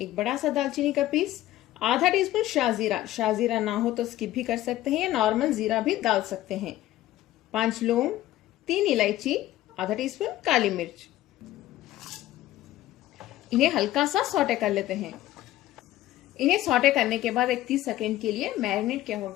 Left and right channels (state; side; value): quieter; right; 14.7 dB